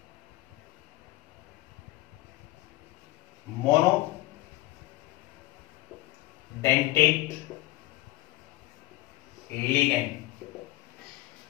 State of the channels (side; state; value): right; quieter; 17.8 dB